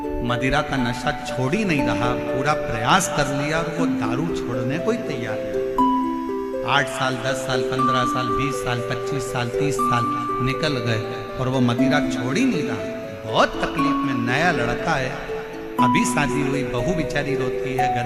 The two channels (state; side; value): identical; both; correlation 1.00